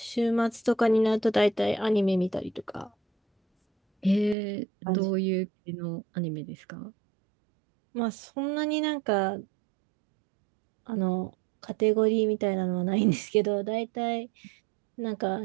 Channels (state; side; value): drops out; left; at 4.4 s